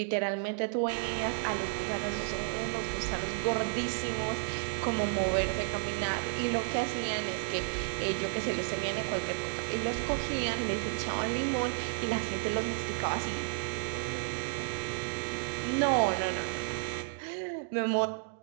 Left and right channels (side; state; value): left; silent; digital silence